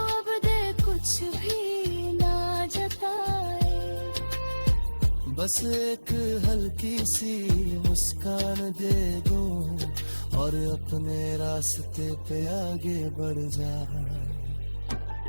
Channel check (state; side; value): inverted; both; correlation -1.00